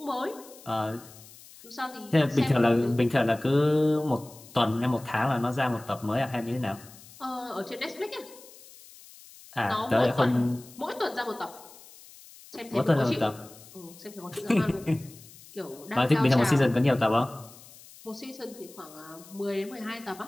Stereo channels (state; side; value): noise; left; hiss, 21 dB below the sound